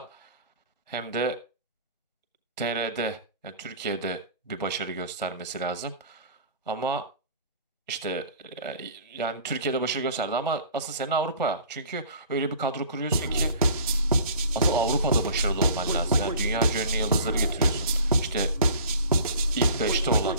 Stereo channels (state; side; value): inverted; both; correlation -0.45